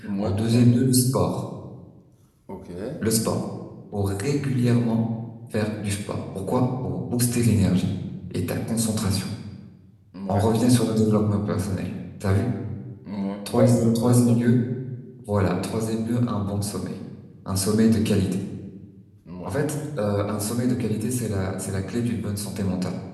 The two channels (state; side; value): identical; both; correlation 1.00